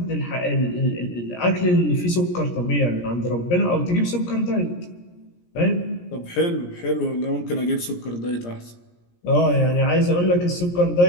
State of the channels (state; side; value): late; right; 17 ms